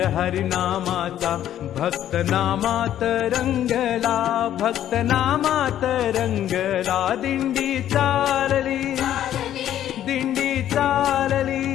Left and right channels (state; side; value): quieter; right; 11.4 dB